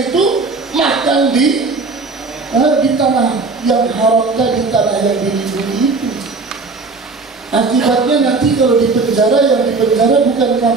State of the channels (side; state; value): left; quieter; 4.0 dB